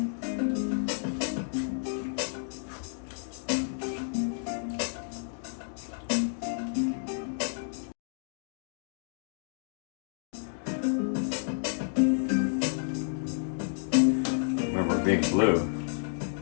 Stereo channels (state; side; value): silent; right; digital silence